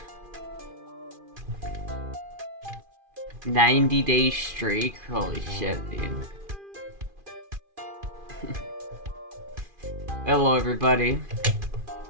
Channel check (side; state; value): left; late; 2.4 ms